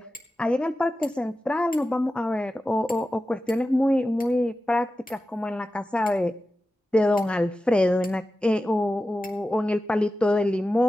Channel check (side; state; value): both; normal; correlation 0.94